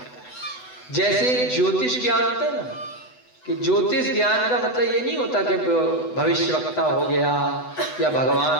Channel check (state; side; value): late; right; 8.0 ms